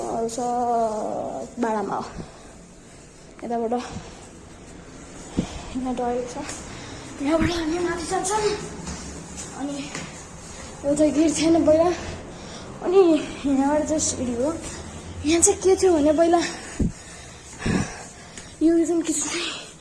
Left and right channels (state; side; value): identical; both; correlation 1.00